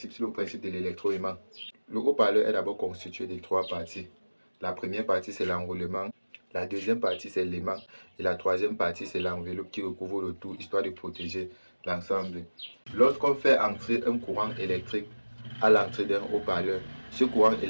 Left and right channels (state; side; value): inverted; both; correlation -1.00